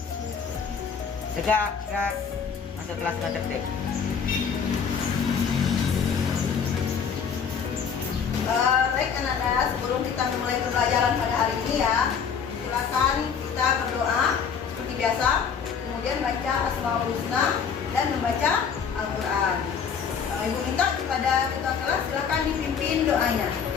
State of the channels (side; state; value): right; quieter; 6.6 dB